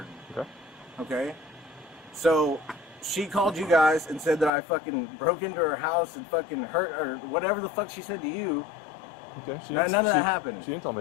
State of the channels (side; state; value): right; drops out; at 4.5 s